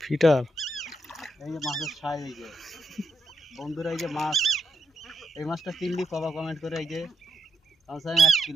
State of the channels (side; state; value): both; normal; correlation 0.82